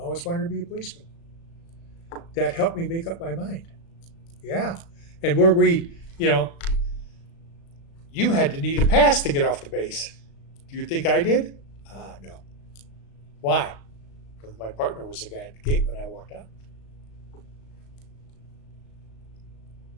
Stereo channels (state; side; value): late; right; 36 ms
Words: wanted to be a policeman. That helped me make up my mind. Yeah. And where you had to need a pass to get off the base. Do you think I did? No. Why? Because my partner was the guy at the gate when I walked out.